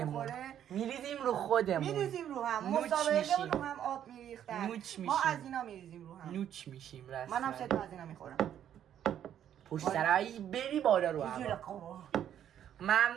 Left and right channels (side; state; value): left; quieter; 10.1 dB